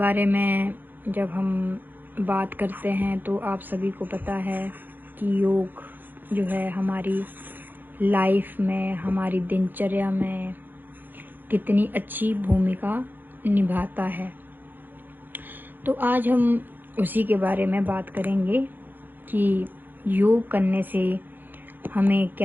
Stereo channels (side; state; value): left; late; 0.089 ms